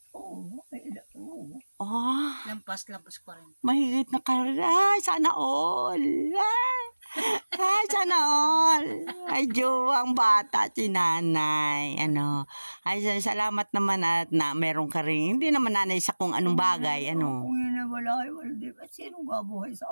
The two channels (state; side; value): inverted; both; correlation -1.00